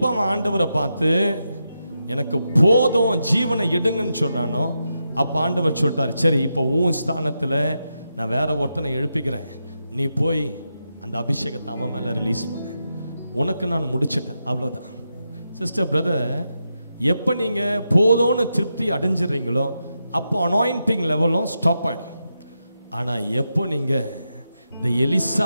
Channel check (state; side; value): inverted; both; correlation -0.87